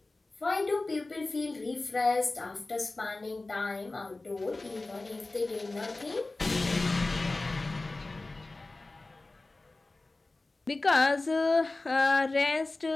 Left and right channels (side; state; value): right; quieter; 3.2 dB